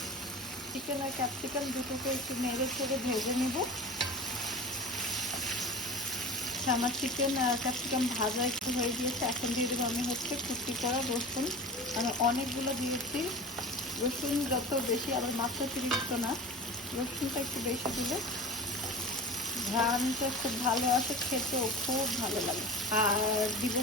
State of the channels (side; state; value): both; normal; correlation 0.34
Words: চিকেন আর ক্যাপসিকাম দুটোকে একটু নেড়ে চেড়ে ভেজে নিব। আমার চিকেন আর ক্যাপসিকাম ভাজা একটু হয়ে গিয়েছে, এখন দিয়ে দেবো আমি হচ্ছে কুচি করা রসুন। আমি অনেকগুলো দিয়েছি, রসুন যত বেশি আবার মাত্রাতিরিক্ত না, রসুনটা একটু বেশি দিলে ঘ্রাণটা খুব ভালো আসে, খেতেও খুব ভালো লাগে। আর দিব